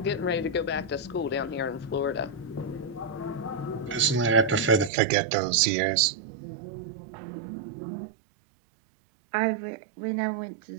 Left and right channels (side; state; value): left; drops out; at 4.9 s